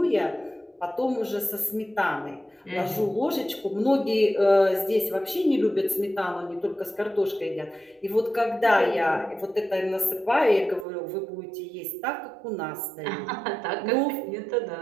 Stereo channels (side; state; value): left; drops out; at 10.9 s